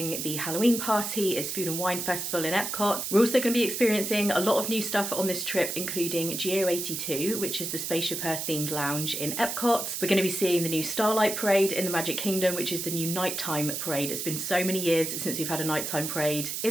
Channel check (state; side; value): noise; right; hiss, 4 dB below the sound